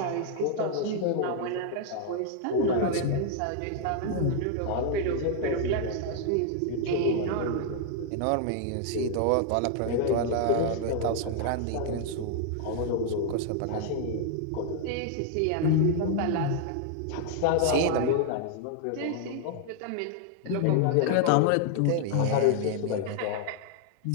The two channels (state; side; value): different; both; correlation 0.00